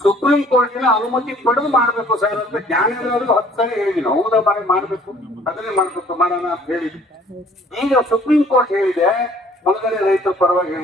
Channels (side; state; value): both; normal; correlation 0.56